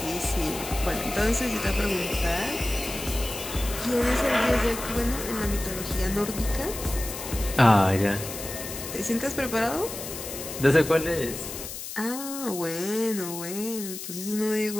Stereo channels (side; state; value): left; noise; hiss, 9 dB below the sound